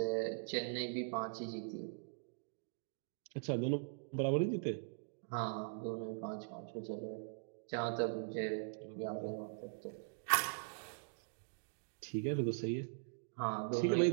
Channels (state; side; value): silent; left; digital silence